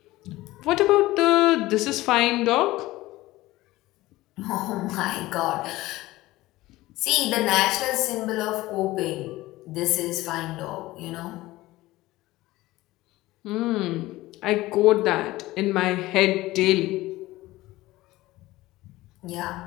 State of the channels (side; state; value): right; quieter; 18.0 dB